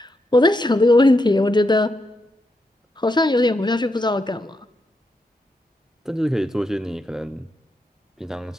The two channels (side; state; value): both; normal; correlation 0.82